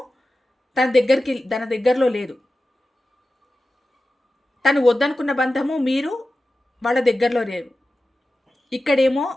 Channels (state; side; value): normal; both; correlation 0.94